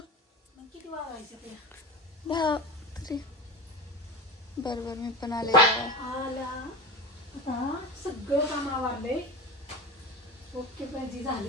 किती वाजायचं ते? 10 तरी. बरोबर मी पण आले. आला आता सगळं काम आवरलंय. ओके पाहिजे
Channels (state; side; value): normal; both; correlation 0.28